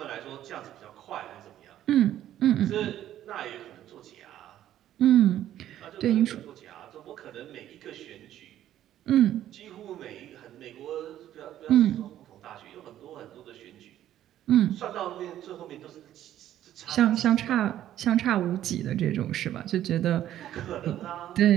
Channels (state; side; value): quieter; left; 12.1 dB